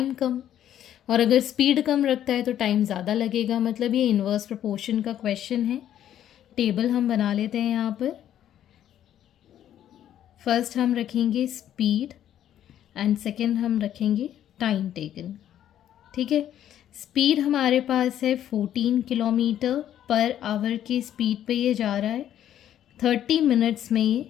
कम, और अगर स्पीड कम रखता है तो टाइम ज़्यादा लगेगा। मतलब ये इन्वर्स प्रोपोर्शन का क्वेश्चन है। टेबल हम बना लेते हैं यहाँ पर। फर्स्ट हम रखेंगे स्पीड एंड सेकेंड हम रखेंगे टाइम टेकन। ठीक है, स्पीड हमारे पास है 14 किलोमीटर पर आवर की स्पीड पे ये जा रहा है, 30 मिनट्स में ये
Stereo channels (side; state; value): right; quieter; 11.0 dB